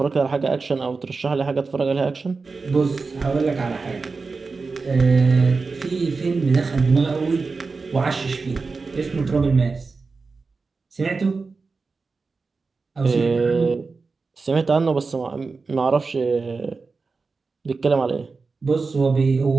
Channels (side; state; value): left; quieter; 4.3 dB